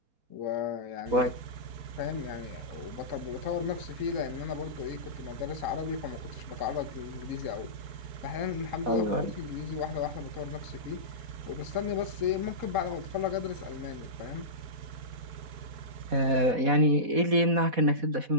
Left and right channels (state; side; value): late; left; 4.1 ms